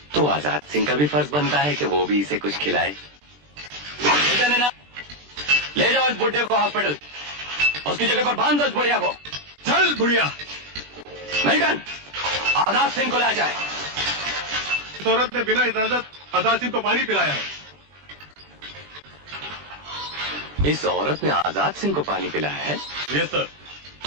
तो आजाद सिंह का भी फर्ज बनता है कि वो भी इसे कुछ खिलाए। ले जाओ इस बुढ़े को हॉस्पिटल, उसकी जगह पर बांध दो इस बुढ़िया को। चल बुढ़िया। मिल्टन, आजाद सिंह को ले जाए। इस औरत ने बिना इजाजत आजाद सिंह को पानी पिलाया है। इस औरत ने आजाद सिंह को पानी पिलाया है? Yes sir.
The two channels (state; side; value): late; left; 20 ms